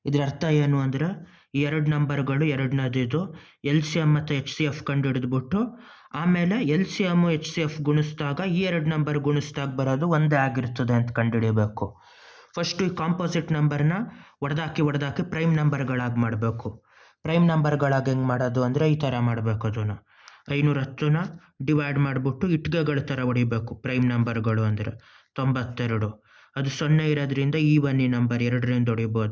ಇದರ ಅರ್ಥ ಏನು ಅಂದರೆ, ಈ ಎರಡು ನಂಬರ್ಗಳು ಎರಡನೇದು ಎಲ್ ಸಿ ಎಮ್ ಮತ್ತು ಎಚ್ ಸಿ ಎಫ್ ಕಂಡು ಹಿಡಿದ್ಬಿಟ್ಟು ಆಮೇಲೆ L C M H C F ಗುಣಿಸಿದಾಗ ಈ ಎರಡು ನಂಬರ್ ಗುಣಿಸಿದಾಗ ಬರೋದು ಒಂದೇ ಆಗಿರ್ತದೆ ಅಂತ ಕಂಡುಹಿಡಿಯಬೇಕು. ಫಸ್ಟು ಈ ಕಾಂಪೋಸಿಟ್ ನಂಬರ್ನ ಹೊಡೆದಾಕಿ ಪ್ರೈಮ್ ನಂಬರ್ಗಳಾಗಿ ಮಾಡಬೇಕು. ಪ್ರೈಮ್ ನಂಬರ್ಗಳಾಗಿ ಹೆಂಗೆ ಮಾಡೋದು ಅಂದರೆ ಈ ಥರ ಮಾಡಬೇಕು. ಅದನ್ನು 510ನ ಡಿವೈಡ್ ಮಾಡಿಬಿಟ್ಟು ಇಟ್ಗೆಗಳ ಥರ ಹೊಡಿಬೇಕು. ಪ್ರೈಮ್ ನಂಬರ್ಗಳು ಅಂದರೆ 92. ಅದು 0 ಇರೋದ್ರಿಂದ ಈ ಬನ್ನಿ ನಂಬರ್ 2ರಿಂದ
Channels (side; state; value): both; identical; correlation 1.00